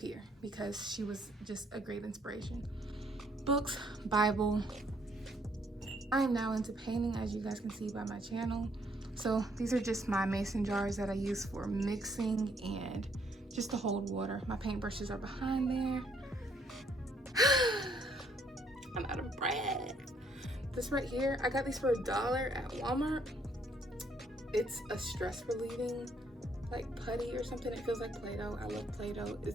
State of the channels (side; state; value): both; normal; correlation 0.68